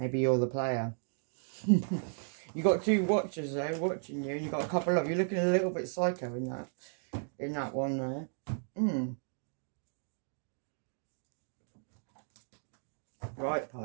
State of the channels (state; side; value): silent; left; digital silence